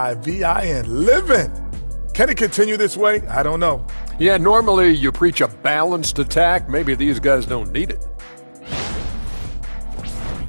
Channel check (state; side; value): inverted; both; correlation -1.00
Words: living. Can it continue this way? I don't know. Yeah, normally you preach a balanced attack. Maybe these guys don't need it.